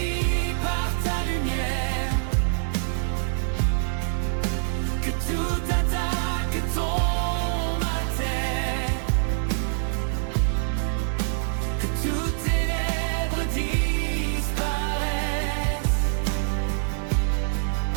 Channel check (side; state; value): left; silent; 62 dB below the other